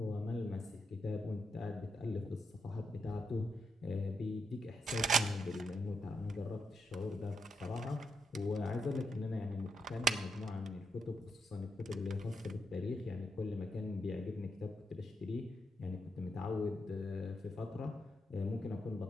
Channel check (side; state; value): both; normal; correlation 0.82